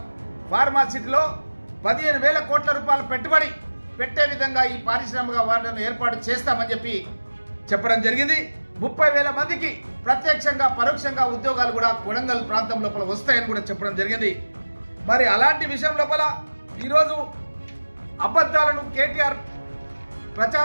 ఫార్మా సిటీలో 15,000 కోట్ల రూపాయల పెట్టుబడి పెట్టే విధంగా ఈ పారిశ్రామిక వాడను ఏర్పాటు చేస్తామని చెప్పి చెప్పడం జరిగింది. 30,000 మందికి ప్రత్యక్షంగా పరోక్షంగా ఉద్యోగాలు కూడా కొడంగల్ ప్రాంతం లోపల వస్తాయని కూడా చెప్పడం జరిగింది. మరి అలాంటి విషయం లోపల ఈరోజు అబద్ధాలను కేటీఆర్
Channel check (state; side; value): inverted; both; correlation -1.00